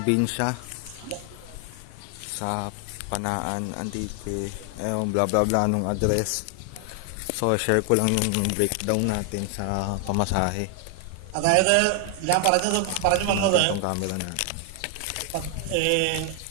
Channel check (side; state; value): both; different; correlation 0.00